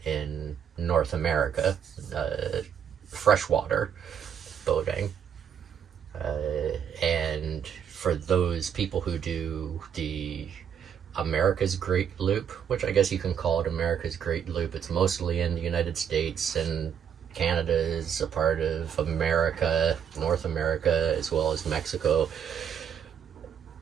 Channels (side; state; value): left; quieter; 8.3 dB